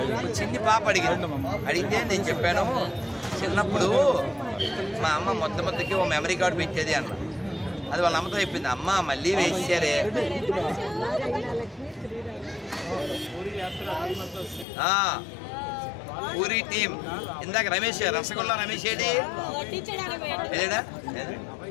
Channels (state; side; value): drops out; right; at 14.7 s